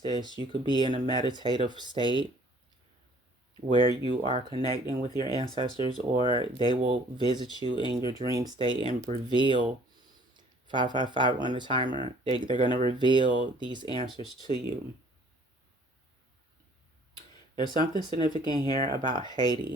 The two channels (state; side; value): normal; both; correlation 0.56